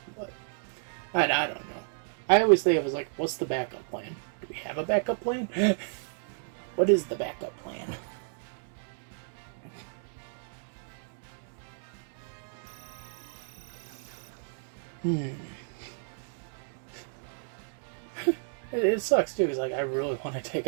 But I don't know. I always think it was like, what's the backup plan? Do we have a backup plan? What is the backup plan? It sucks too, because like, I really want to take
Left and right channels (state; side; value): silent; left; digital silence